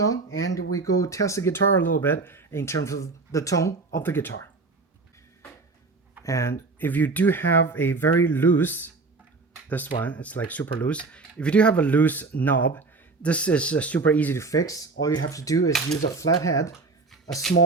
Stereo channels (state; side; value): quieter; left; 3.9 dB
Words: and we go test the guitar a little bit in terms of the tone of the guitar. And if you do have a very loose, this one, it's like super loose. If you do have a loose knob, this is super easy to fix. All you have to do is use a flathead, a